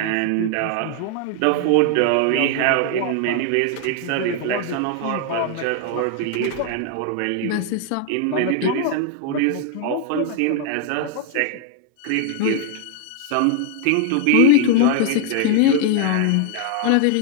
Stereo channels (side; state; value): both; different; correlation 0.00